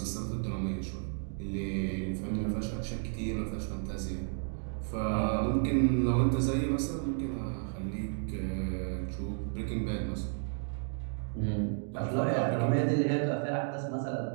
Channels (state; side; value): silent; left; 56 dB below the other